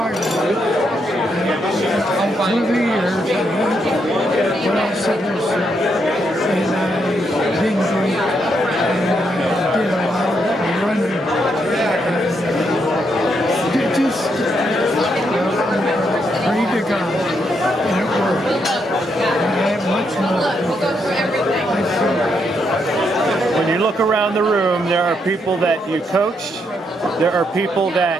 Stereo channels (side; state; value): both; normal; correlation 0.78